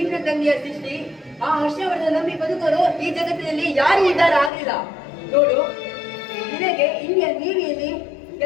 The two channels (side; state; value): right; drops out; at 4.5 s